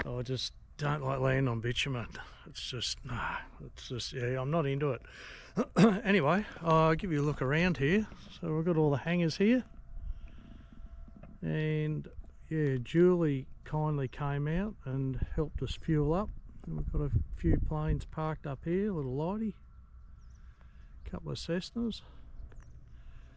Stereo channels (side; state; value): both; identical; correlation 1.00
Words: I just don't like landing on bitumen. It's just yeah, I'm not into it. Anyway, I'll give you a look around here. So we've got all the hangars here, and yeah, Julie kindly came out and helped us fuel up. And we've got a few planes parked up here, a little lighty, a couple of Cessnas.